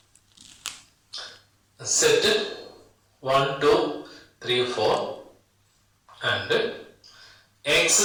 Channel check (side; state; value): both; identical; correlation 1.00